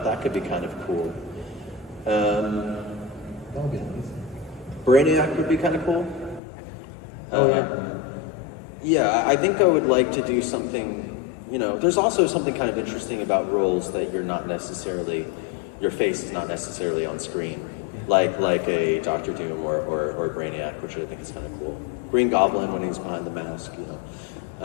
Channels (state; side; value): drops out; right; at 6.4 s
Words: could be kind of cool. That would be nice. Brainiac would be kind of cool. Oh, yeah. Yeah, I think I would like to do something, you know, there's also something kind of interesting about roles that you're not necessarily, your face is not necessarily on screen. Like a Doctor Doom or Brainiac, which I think is kind of cool. Green Goblin when he's behind the mask, you know.